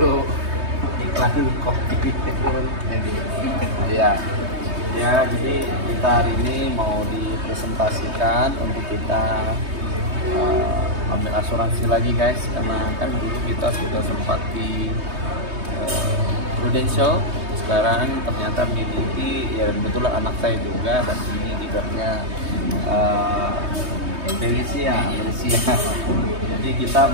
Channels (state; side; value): late; left; 3.2 ms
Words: iklan kopi. Iya. Ya, jadi kita hari ini mau dipresentasikan untuk kita ambil asuransi lagi guys, karena kan dulu kita sudah sempat di Prudential, sekarang ternyata miliki ya, kebetulan anak saya juga, dan ini leadernya Felicia. Jadi kita